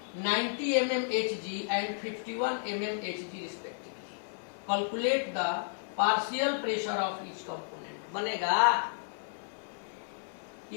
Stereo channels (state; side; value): silent; right; 56 dB below the other